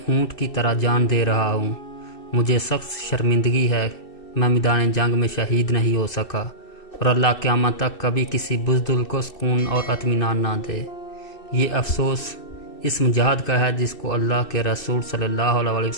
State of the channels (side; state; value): right; late; 2.6 ms